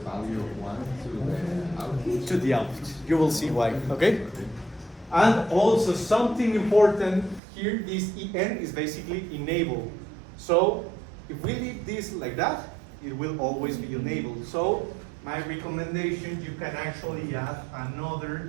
of 1 to the output. to the output. You will see why, okay? And also something important here, this EN is basically enable. So if we leave this like that, it will always be enabled. So my recommendation, you can actually add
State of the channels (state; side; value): drops out; left; at 7.4 s